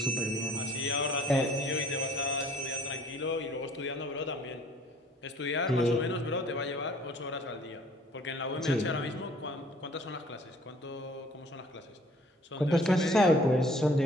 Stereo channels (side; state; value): both; normal; correlation 0.55